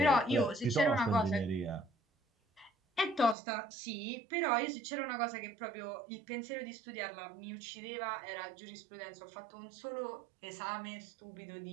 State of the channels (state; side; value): drops out; left; at 3.4 s